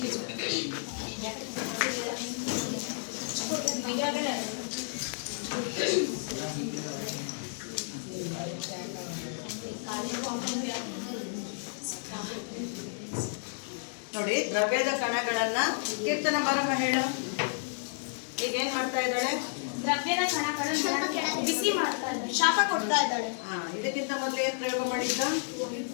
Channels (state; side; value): silent; right; digital silence